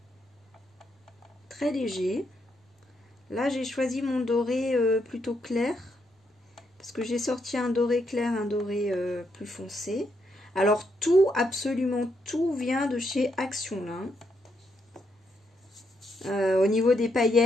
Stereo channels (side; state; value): both; normal; correlation 0.78